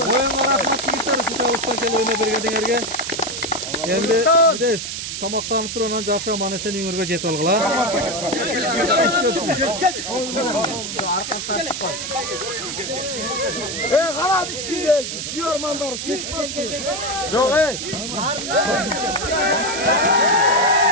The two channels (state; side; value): noise; right; hiss, 5 dB below the sound